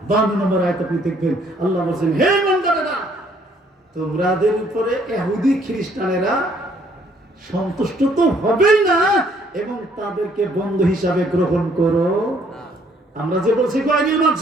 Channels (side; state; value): both; normal; correlation 0.64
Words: 52 নম্বর আয়াত আপনি দেখবেন আল্লাহ বলেন হে বান্দারা তোমাদের উপরে ইহুদি খ্রিস্টানেরা সন্তুষ্ট তো হবেই না এবং তাদেরকে বন্ধু হিসাবে গ্রহণ করো। আমরা যে বলছি গায়রুল